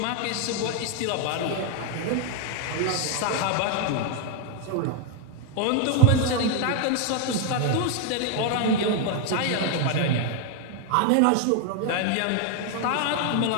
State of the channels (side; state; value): both; different; correlation 0.00